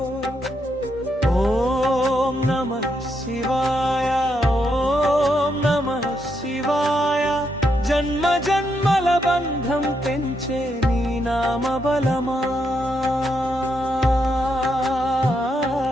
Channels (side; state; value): both; normal; correlation 0.80